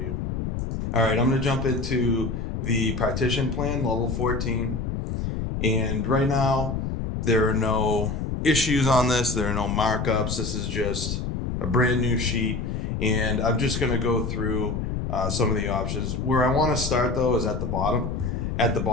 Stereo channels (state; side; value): noise; left; rumble, 3 dB below the sound